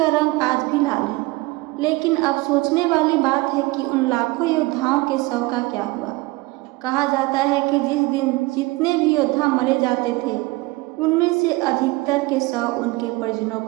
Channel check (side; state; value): left; quieter; 22.1 dB